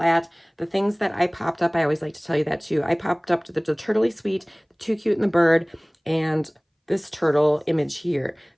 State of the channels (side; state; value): both; identical; correlation 1.00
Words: The things that I popped up, I always like to tell you that too. I popped up to the Turtley Sweet, the Too Cute and the bird, and this turtle image here.